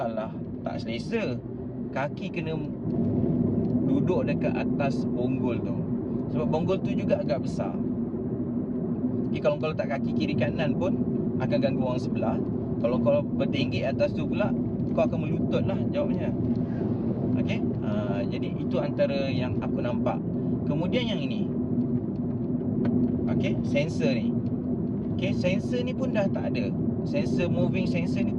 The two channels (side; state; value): both; identical; correlation 1.00